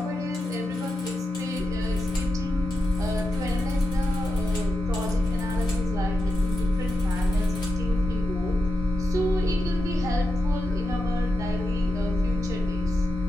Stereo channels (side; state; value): both; normal; correlation 0.88